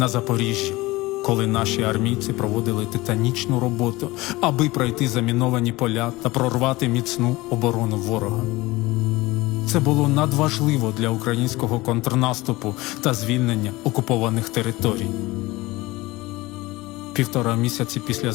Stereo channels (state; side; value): quieter; right; 20.6 dB